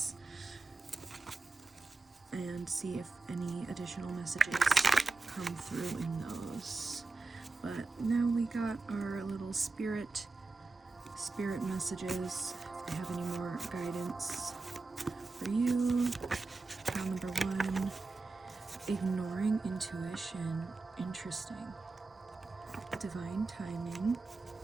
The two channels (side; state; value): left; quieter; 3.7 dB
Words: and see if any additional messages come through in those. But now we got our little spirit messages. If they have any more guidance for you. Pile number 1, ignoring intuition. Interesting. Divine timing.